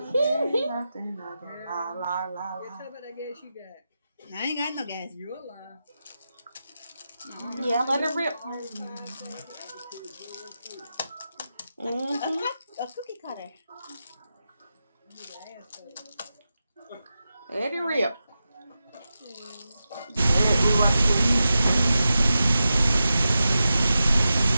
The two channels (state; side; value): inverted; both; correlation -0.91